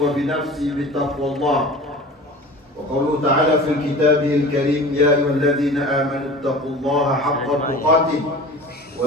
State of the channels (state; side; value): normal; both; correlation 0.39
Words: بتقوى الله. وقوله تعالى في كتابه الكريم: يا أيها الذين آمنوا اتقوا الله حق تقاته